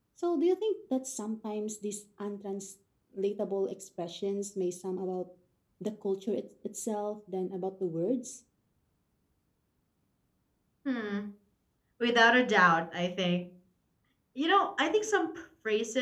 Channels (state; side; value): identical; both; correlation 1.00